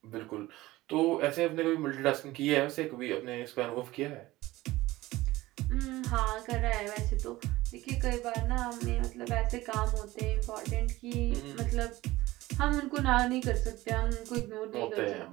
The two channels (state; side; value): quieter; left; 18.2 dB